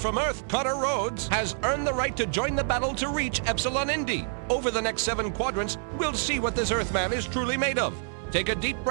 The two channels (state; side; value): silent; left; digital silence